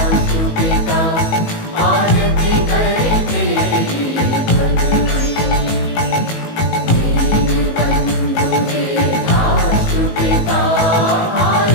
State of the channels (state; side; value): late; right; 18 ms